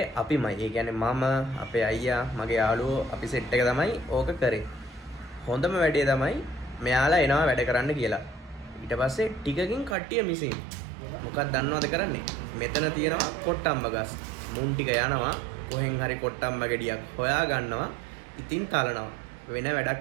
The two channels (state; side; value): drops out; left; at 10.0 s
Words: අපිමයි. ඒ කියන්නේ මම, අපේ අයියා, මගේ යාළුවෝ අපි සෙට් එක තමයි ඕක කරේ. හොඳම වැඩේ තමයි මෙයාලා එනවා වැඩ කරන්න කියලා. ඊට පස්සේ ටිකකින් කට්ටිය මිසින්. මොකක්ද දන්නවද කරන්නේ? මෙතන තියෙනවා කොට්ටම්බ ගස්. මුන් ටික යනවා කොහෙන් හරි කොට්ටම්බ ගෙඩියක් හොයා ගන්නවා. ඉතින් තලනවා. වෙන වැඩක්